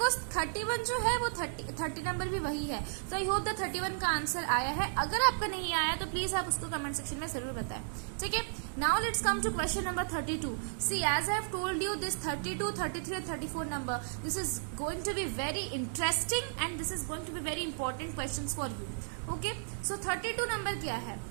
31 जो है वो 30 number भी वही है. So I hope that 31 का आंसर आया है. अगर आपका नहीं आया तो प्लीज आप उसको कमेंट सेक्शन में जरूर बताएं. ठीक है. Now let's come to question number 32. See, as I have told you, this 32, 33 and 34 number, this is going to be very interesting and this is going to be very important questions for you. Okay, so 32 number क्या है?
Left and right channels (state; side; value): silent; left; digital silence